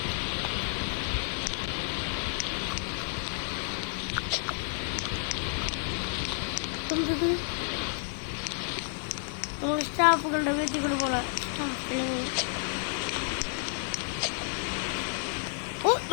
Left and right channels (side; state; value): right; silent; digital silence